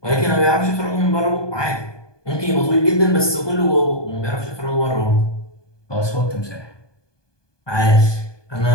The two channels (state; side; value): late; right; 1.2 ms